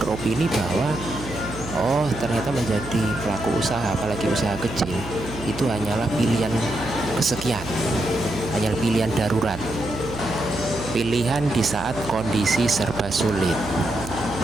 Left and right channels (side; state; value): right; noise; hum, 11 dB below the sound